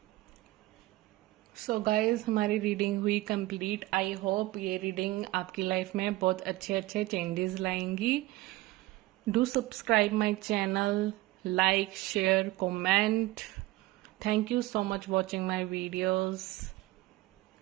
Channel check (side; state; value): left; quieter; 18.2 dB